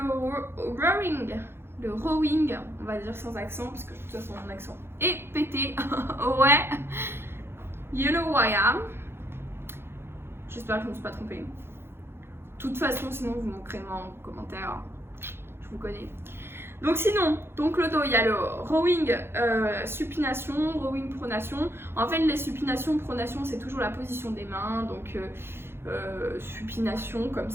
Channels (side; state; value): left; late; 0.11 ms